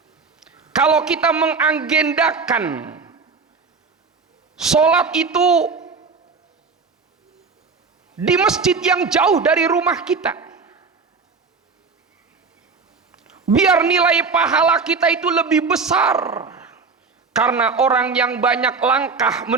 kalau kita mengagendakan sholat itu di masjid yang jauh dari rumah kita, biar nilai pahala kita itu lebih besar. Karena orang yang banyak langkah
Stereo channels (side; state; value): left; quieter; 4.8 dB